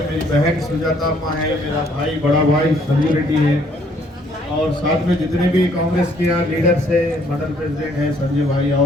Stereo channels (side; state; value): both; normal; correlation 0.64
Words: मेरी बहन सुजाता अम्मा है, मेरा भाई बड़ा भाई संजीव रेड्डी है और साथ में जितने भी कांग्रेस के यहाँ लीडर्स है, मंडल प्रेसिडेंट है संजय भाई